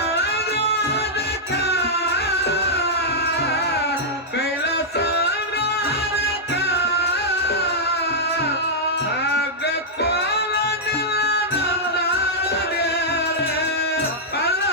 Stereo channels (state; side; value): normal; both; correlation -0.07